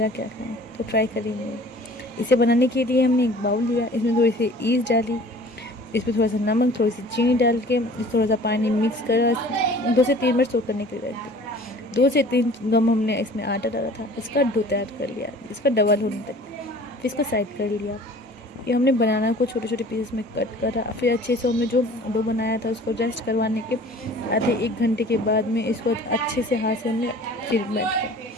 क्या खाएं, तो ट्राई करेंगे। इसे बनाने के लिए हमने एक बाउल लिया, इसमें थोड़ी सी ईस्ट डाली, इसमें थोड़ा सा नमक, थोड़ी सी चीनी डाल के थोड़ा सा पानी मिक्स कर 2 से 3 मिनट सोक करने के लिए रख दिया। 2 से 3 गम हमने इसमें आटा डाला था, इसका डो तैयार कर लिया, इसका डबल होने तक। फिर इसको साइड कर लिया। ये हमने बनाना को छोटे छोटे पीसेस में कट करा। फिर अच्छे से हमने जो डो बनाया था उसको रेस्ट करवाने के आधे 1 घंटे के बाद में इसको अच्छे से हाथ से हमने फिर बैठ किया।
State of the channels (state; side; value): normal; both; correlation 0.47